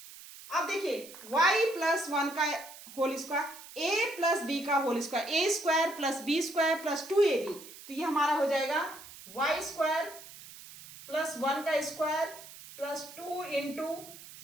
अब देखिए y प्लस 1 का whole square, a plus B का whole square, a square plus B square plus 2ab, तो ये हमारा हो जाएगा y स्क्वायर प्लस 1 का square plus 2 into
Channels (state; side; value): noise; right; hiss, 17 dB below the sound